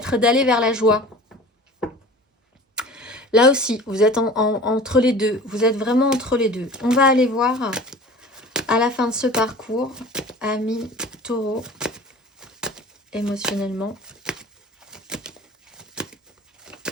d'aller vers la joie. Là aussi, vous êtes entre les deux. Vous êtes vraiment entre les deux. On va aller voir à la fin de ce parcours, amis taureau, émotionnellement.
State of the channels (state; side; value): normal; both; correlation 0.41